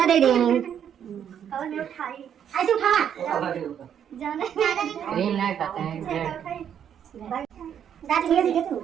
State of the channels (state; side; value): quieter; left; 8.9 dB